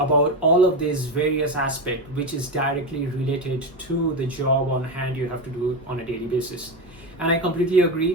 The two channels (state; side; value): normal; both; correlation 0.16